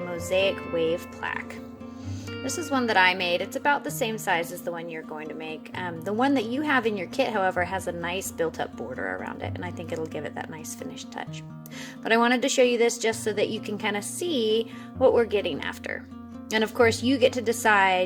wave plaque. This is one that I made. It's about the same size as the one you're going to make. The one that you have in your kit, however, has a nice built-up border around it, and I think it'll give it that nice finished touch. But I wanted to show you this just so that you can kind of see what we're getting after. And of course, you get to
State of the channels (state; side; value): identical; both; correlation 1.00